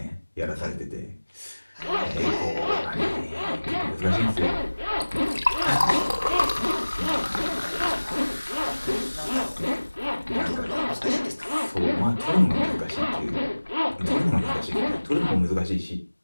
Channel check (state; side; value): inverted; both; correlation -1.00